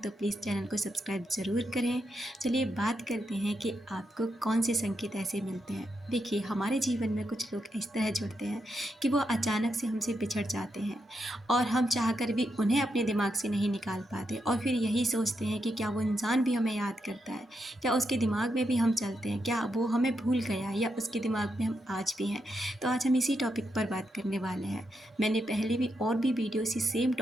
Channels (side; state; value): both; normal; correlation 0.83